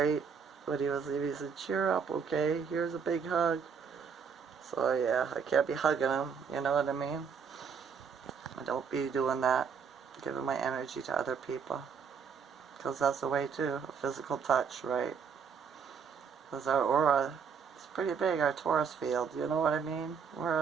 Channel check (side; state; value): left; quieter; 6.4 dB